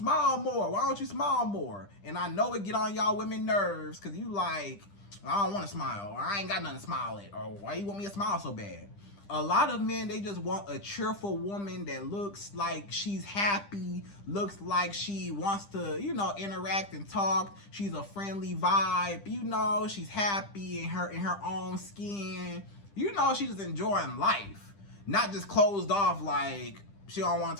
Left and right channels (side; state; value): right; late; 10 ms